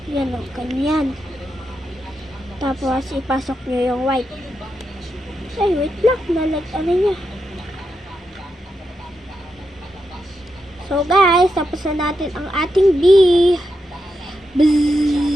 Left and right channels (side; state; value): both; normal; correlation 0.85